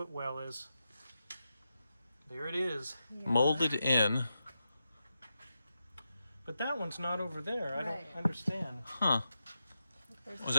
is, there it is. Molded in. But that one's not over there. I Right. don't understand. Huh. Was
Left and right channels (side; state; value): both; inverted; correlation -0.89